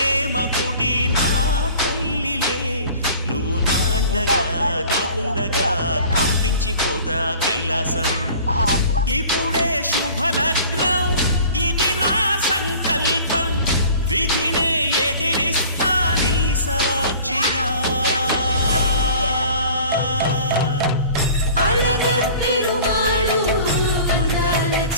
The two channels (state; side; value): inverted; both; correlation -0.45